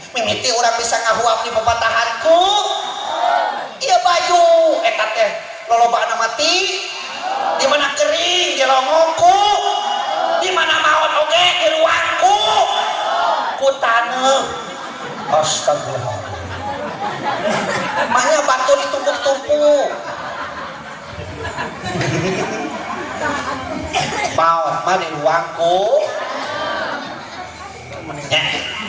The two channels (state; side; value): identical; both; correlation 1.00